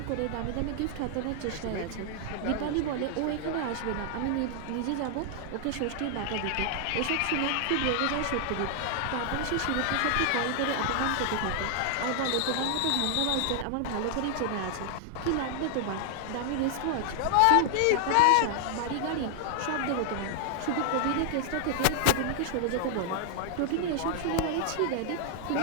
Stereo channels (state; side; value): different; both; correlation 0.00